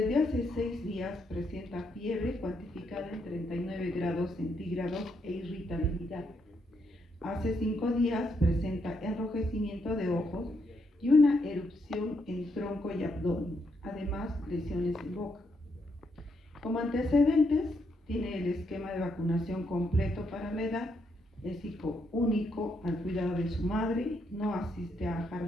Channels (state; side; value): normal; both; correlation 0.77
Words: hace 6 días presenta fiebre cuantificada en 39 grados centígrados e irritabilidad. Hace 5 días presenta enrojecimiento de ojos y una erupción en tronco y abdomen, además lesiones en boca. Como antecedentes, tiene el esquema de vacunación completo para la edad, es hijo único al cuidado de su madre, no asiste a